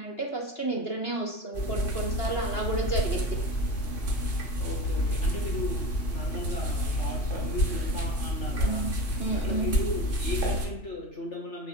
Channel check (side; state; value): right; late; 2.6 ms